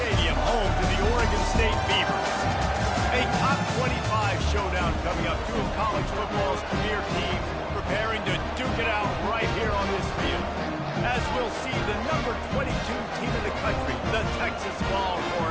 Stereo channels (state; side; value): identical; both; correlation 1.00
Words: home to the Oregon State Beavers. A top 25 showdown coming up. Two of college football's premier teams preparing to duke it out right here on this field. As we'll see the number 22 team in the country, the Texas